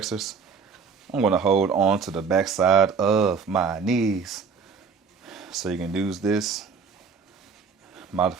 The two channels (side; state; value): left; quieter; 5.6 dB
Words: I'm going to hold on to the back side of my knees. So you can use this